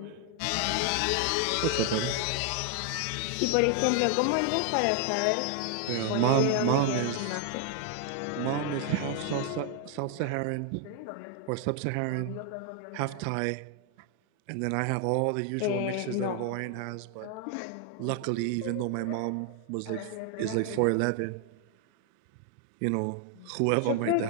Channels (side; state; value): both; different; correlation 0.00